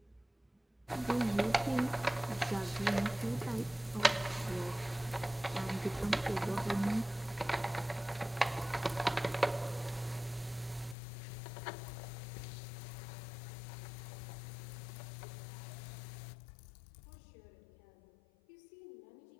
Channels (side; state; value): right; drops out; at 11.0 s